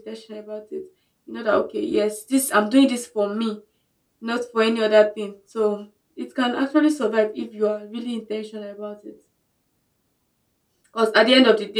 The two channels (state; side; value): identical; both; correlation 1.00